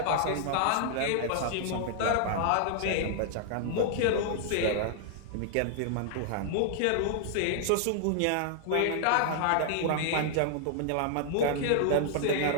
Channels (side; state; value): both; different; correlation -0.01